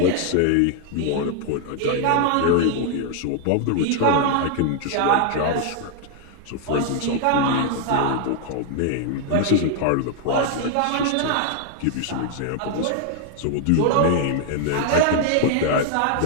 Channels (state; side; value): different; both; correlation 0.00